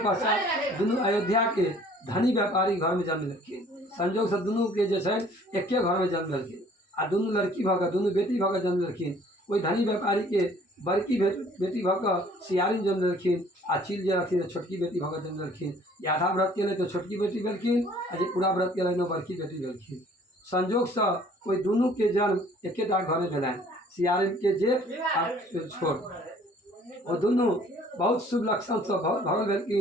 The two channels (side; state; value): both; normal; correlation 0.55